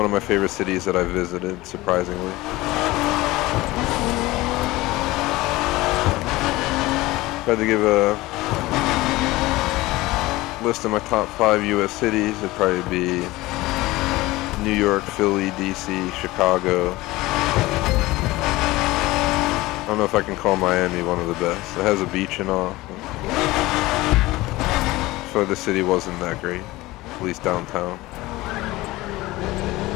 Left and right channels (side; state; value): right; quieter; 19.3 dB